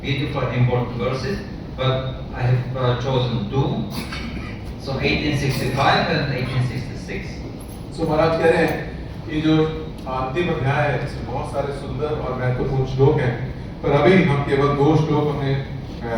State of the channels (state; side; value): identical; both; correlation 1.00